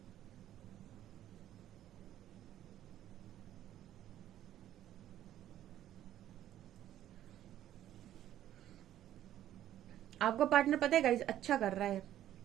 आपका पार्टनर पता है गाइस अच्छा कर रहा है,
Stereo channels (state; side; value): quieter; left; 12.1 dB